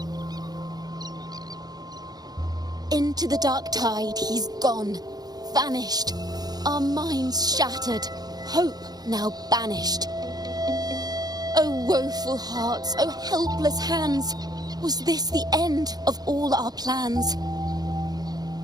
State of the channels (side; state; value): left; late; 0.19 ms